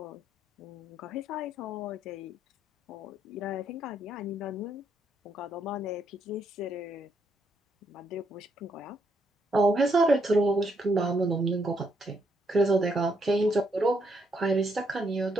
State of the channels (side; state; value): both; normal; correlation 0.75